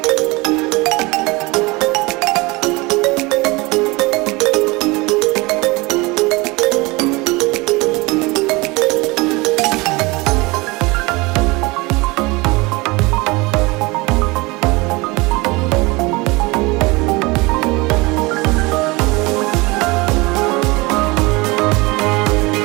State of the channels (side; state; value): left; quieter; 24.2 dB